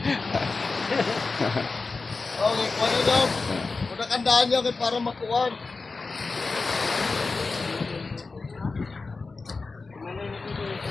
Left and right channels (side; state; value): right; quieter; 4.0 dB